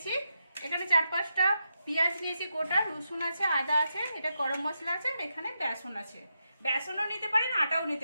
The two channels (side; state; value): both; inverted; correlation -0.86